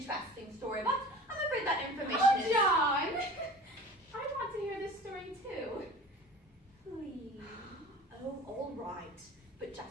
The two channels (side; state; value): both; normal; correlation 0.40